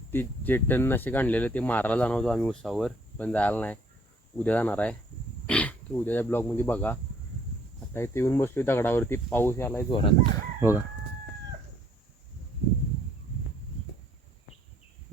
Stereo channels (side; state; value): both; normal; correlation 0.62